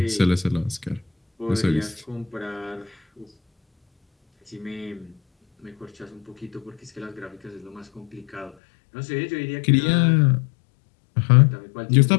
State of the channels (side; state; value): right; drops out; at 8.6 s